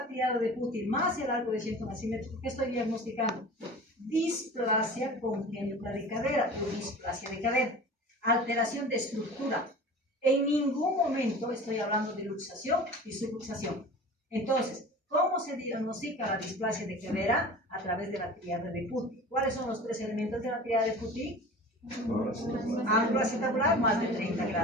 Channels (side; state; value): both; normal; correlation 0.38